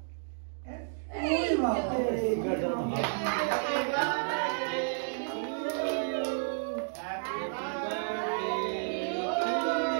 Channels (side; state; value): left; silent; digital silence